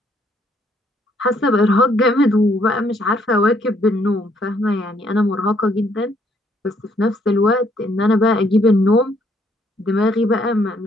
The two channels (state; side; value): normal; both; correlation 0.68